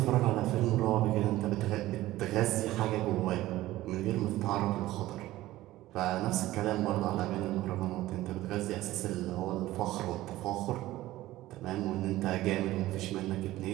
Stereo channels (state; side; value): quieter; left; 16.3 dB